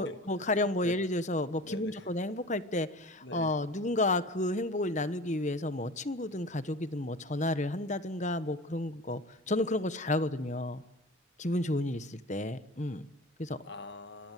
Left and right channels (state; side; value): normal; both; correlation 0.38